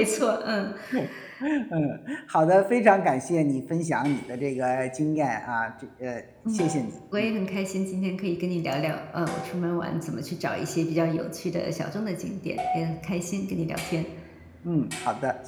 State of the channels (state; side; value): identical; both; correlation 1.00